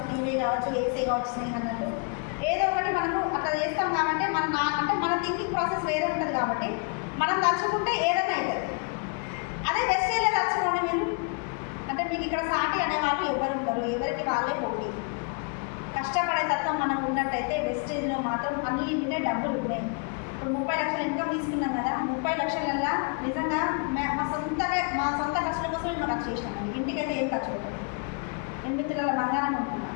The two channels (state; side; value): quieter; right; 37.8 dB